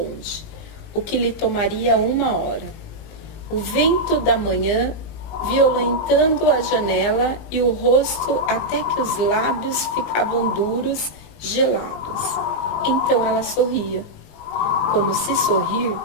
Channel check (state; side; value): late; right; 19 ms